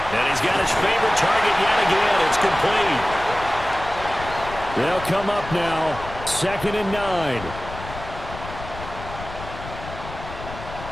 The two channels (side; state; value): left; noise; rumble, 12 dB below the sound